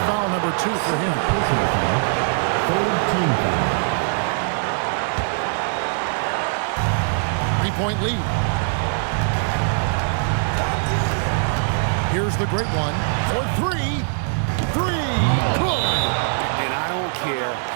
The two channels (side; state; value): left; silent; 64 dB below the other